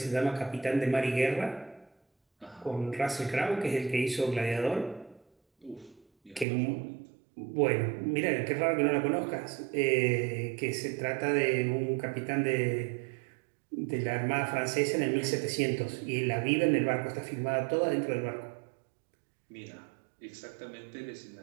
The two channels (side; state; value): left; drops out; at 6.5 s